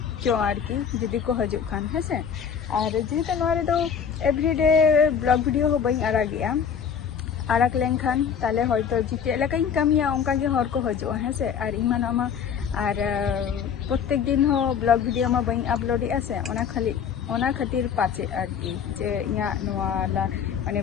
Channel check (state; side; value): quieter; right; 7.4 dB